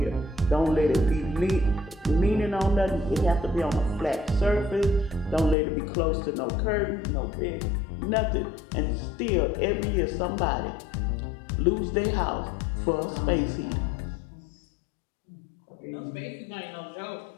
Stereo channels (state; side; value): drops out; right; at 5.6 s